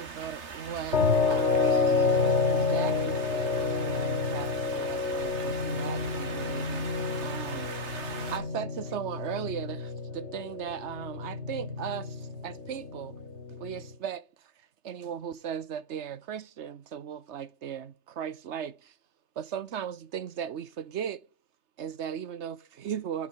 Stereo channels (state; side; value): late; left; 3.3 ms